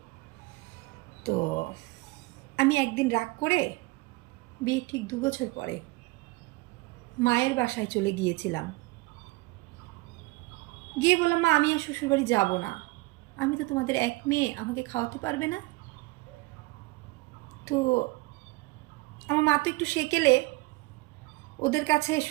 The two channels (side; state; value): left; quieter; 22.4 dB